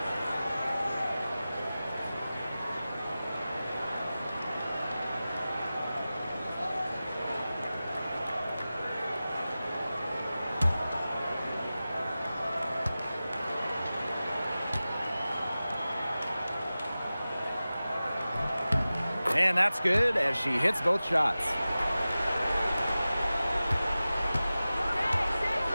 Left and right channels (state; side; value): inverted; both; correlation -0.96